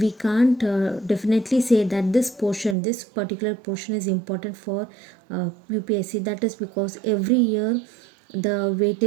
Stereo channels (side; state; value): left; drops out; at 2.8 s